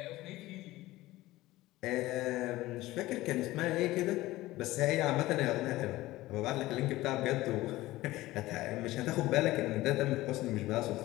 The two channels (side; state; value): right; quieter; 17.7 dB